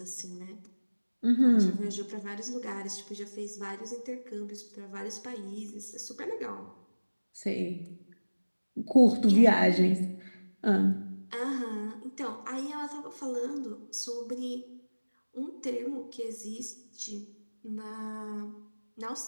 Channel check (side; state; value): both; inverted; correlation -1.00